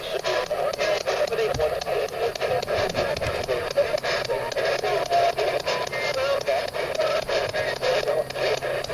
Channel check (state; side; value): identical; both; correlation 1.00